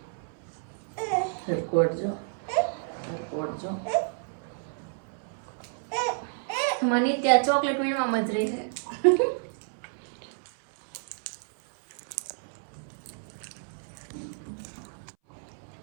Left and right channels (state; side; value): silent; left; 58 dB below the other